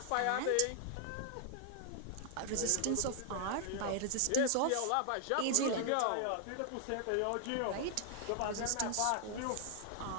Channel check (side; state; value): both; different; correlation 0.00